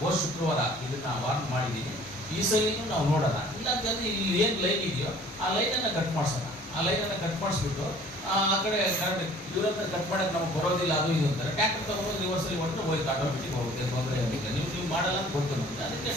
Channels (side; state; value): both; normal; correlation 0.51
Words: ಶುಕ್ರವಾರ ಇದನ್ನು ವಾರ್ನ್ ಮಾಡಿದ್ದೀನಿ. ಈ ಸಲಿನೂ ನಾವು ನೋಡೋಣ. ಇಲ್ಲ ಅಂತಂದರೆ ಇಲ್ಲಿ ಏನು ಲೈನ್ ಇದೆಯೋ ಆ ಲೈನನ್ನು ಕಟ್ ಮಾಡಿಸೋಣ. ಆ ಲೈನನ್ನು ಕಟ್ ಮಾಡಿಸ್ಬಿಟ್ಟು ಆ ಕಡೆ ಕರೆಕ್ಟ್ ಇವರನ್ನ ಕಟ್ ಮಾಡೋಕ್ಕೆ ನಮಗೆ ಬರೋದಿಲ್ಲ, ಅದು ಇದು ಅಂತಾರೆ. ಟ್ಯಾಕ್ಟರ್ ತೊಗೊಂಡು ರಿವರ್ಸಲ್ಲಿ ಹೊರಟು ಹೋಯ್ತು, ಆಟೋಮೆಟಿಕ್ ಹೋಗುತ್ತೆ, ತೊಂದರೆ ಆಗುತ್ತೆ. ನೀವು ಮಾಡಲ್ಲ ಅಂತ ಗೊತ್ತು ನಮಗೆ. ಅದಕ್ಕೆ